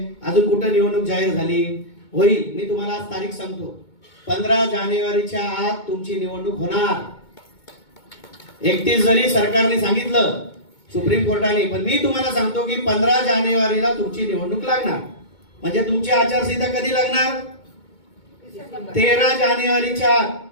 अजून कुठं निवडणूक जाहीर झाली होईल। मी तुम्हाला आज तारीख सांगतो, 15 जानेवारीच्या आत तुमची निवडणूक होणार। 31 जरी सरकारने सांगितलं सुप्रीम कोर्टाने, पण मी तुम्हाला सांगतो की 15 जानेवारीला तुमची निवडणूक लागणार। म्हणजे तुमची आचारसंहिता कधी लागणार? 13 जानेवारीच्या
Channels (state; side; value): late; right; 2.2 ms